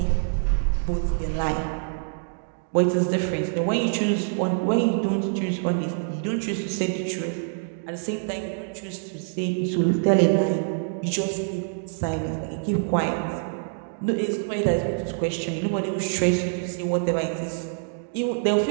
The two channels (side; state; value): left; silent; digital silence